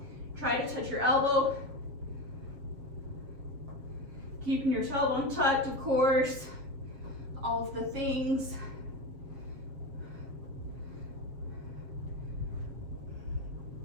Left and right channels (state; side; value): late; left; 7.4 ms